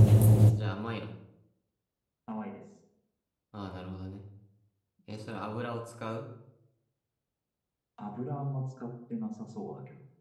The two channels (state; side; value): identical; both; correlation 1.00